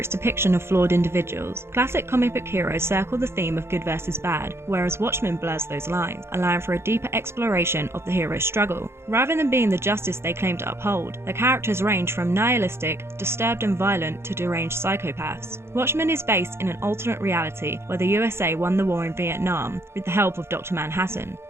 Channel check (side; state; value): left; late; 0.12 ms